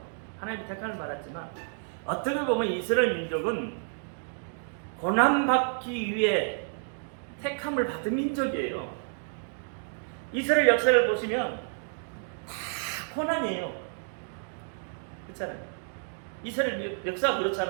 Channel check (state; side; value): silent; left; digital silence